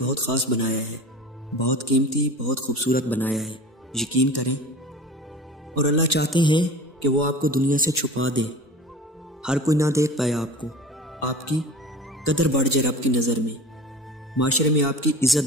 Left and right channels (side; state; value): both; normal; correlation 0.36